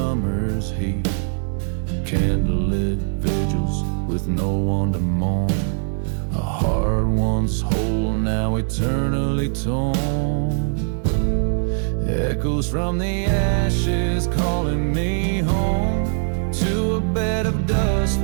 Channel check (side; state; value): left; silent; digital silence